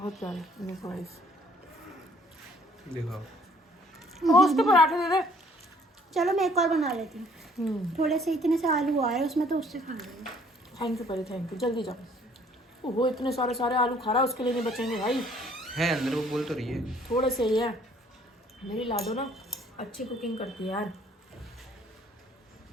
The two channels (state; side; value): normal; both; correlation 0.59